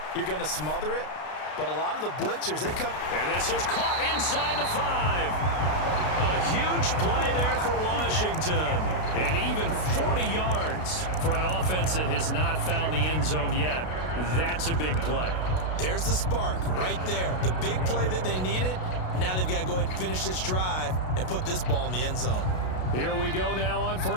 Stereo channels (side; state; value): right; late; 32 ms